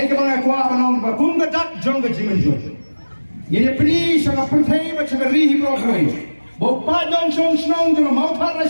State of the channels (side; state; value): both; inverted; correlation -1.00